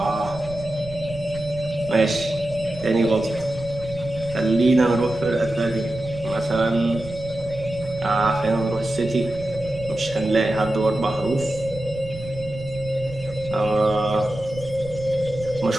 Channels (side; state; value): right; noise; rumble, 14 dB below the sound